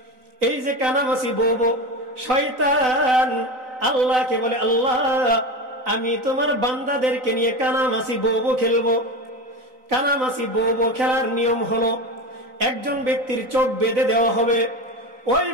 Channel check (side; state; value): left; late; 4.0 ms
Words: এই যে কানামাছি বউ, শয়তান আল্লাহকে বলে, আল্লাহ, আমি তোমার বান্দাদেরকে নিয়ে কানামাছি বউ খেলবো। কানামাছি বউ খেলার নিয়ম হলো, একজন ব্যক্তির চোখ বেঁধে দেওয়া হবে, ওই